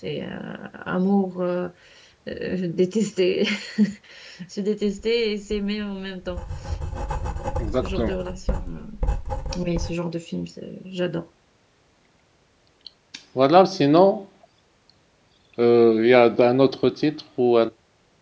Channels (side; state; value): both; identical; correlation 1.00